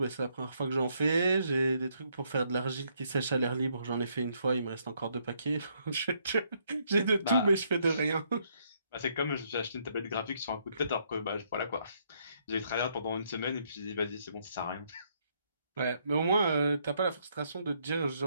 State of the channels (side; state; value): both; inverted; correlation -0.72